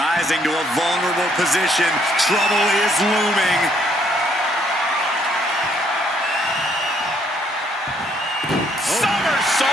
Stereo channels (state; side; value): normal; both; correlation 0.68